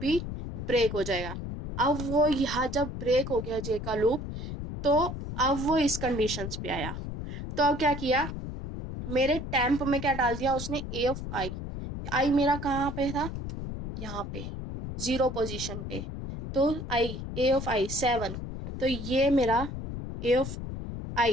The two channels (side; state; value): left; noise; rumble, 7 dB below the sound